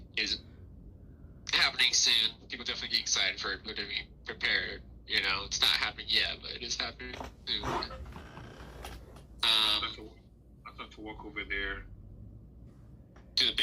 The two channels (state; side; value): identical; both; correlation 1.00